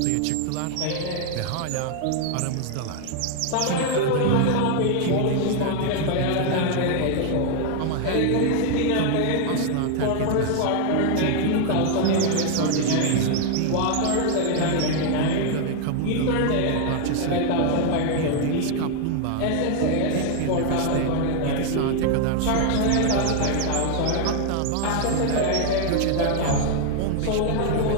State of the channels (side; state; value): both; different; correlation 0.00